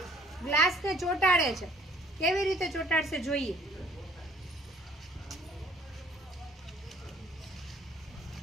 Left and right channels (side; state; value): both; normal; correlation 0.58